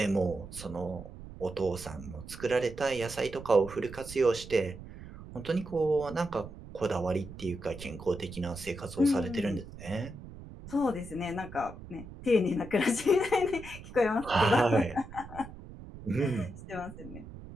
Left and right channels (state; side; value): noise; right; rumble, 14 dB below the sound